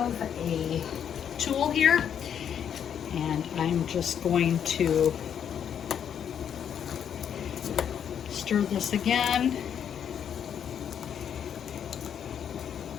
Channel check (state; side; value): quieter; right; 8.5 dB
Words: a tool here, and I'm just going to stir this again.